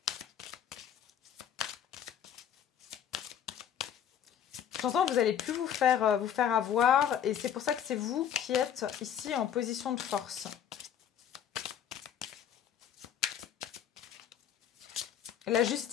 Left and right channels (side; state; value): right; quieter; 9.3 dB